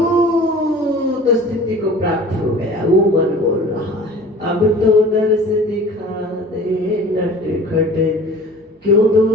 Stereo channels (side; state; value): both; normal; correlation 0.44